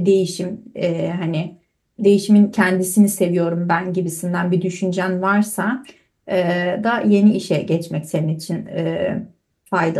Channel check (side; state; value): both; identical; correlation 1.00